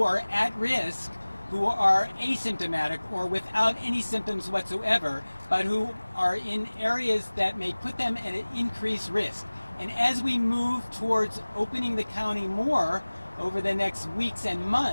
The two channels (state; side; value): inverted; both; correlation -1.00